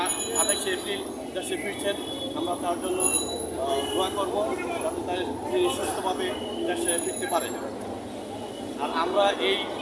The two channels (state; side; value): identical; both; correlation 1.00